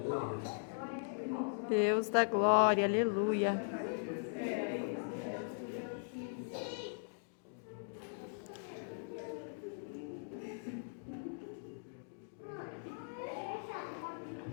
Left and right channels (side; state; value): right; silent; digital silence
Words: Deus da glória, aleluia.